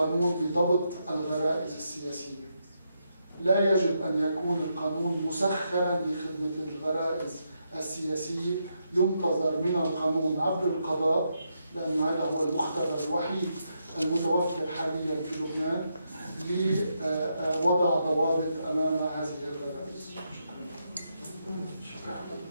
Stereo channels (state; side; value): inverted; both; correlation -0.81